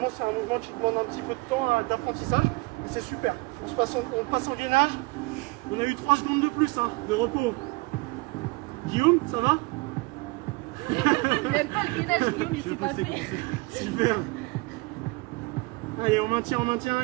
c'est un mouvement qui demande un petit peu de temps, hein, d'apprentissage. Mais c'est super. On passe en gainage. On a eu 3 secondes de plus, hein, de repos. Guillaume, ça va? Même pas le gainage, Guillaume, il sait pas faire. Super. Allez, on maintient,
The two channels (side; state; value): left; quieter; 25.3 dB